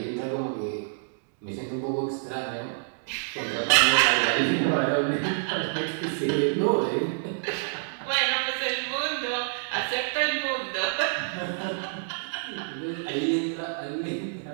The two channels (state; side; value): silent; left; digital silence